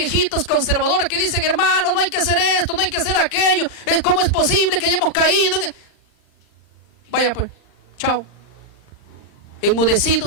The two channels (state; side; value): late; right; 39 ms